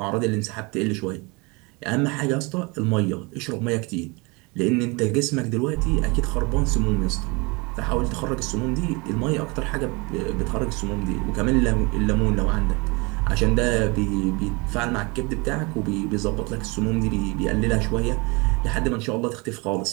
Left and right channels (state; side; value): quieter; left; 27.8 dB